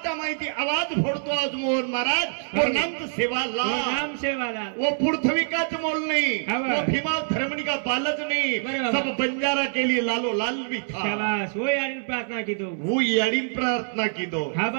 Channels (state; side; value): silent; left; 62 dB below the other